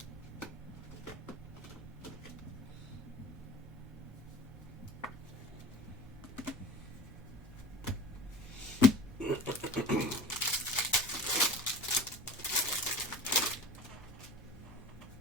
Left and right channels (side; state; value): both; normal; correlation 0.37